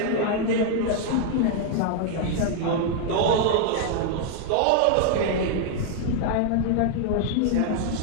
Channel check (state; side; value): different; both; correlation 0.00